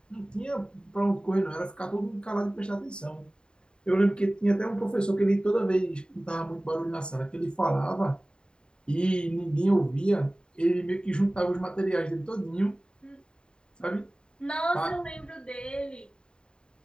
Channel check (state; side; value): late; right; 0.049 ms